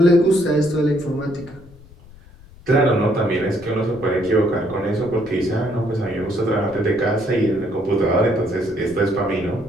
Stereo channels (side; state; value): left; noise; rumble, 23 dB below the sound